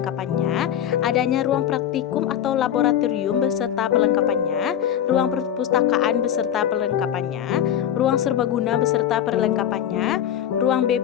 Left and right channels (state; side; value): quieter; right; 10.0 dB